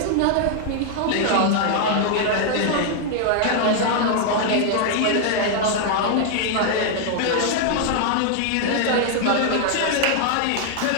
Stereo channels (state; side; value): different; both; correlation 0.00